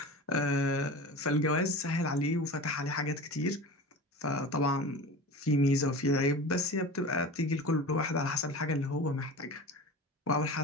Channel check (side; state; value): both; normal; correlation 0.33